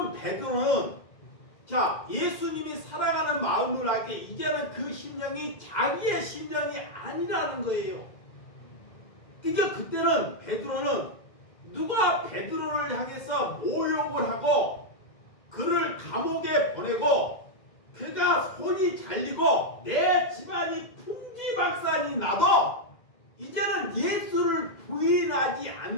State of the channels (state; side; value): late; right; 2.0 ms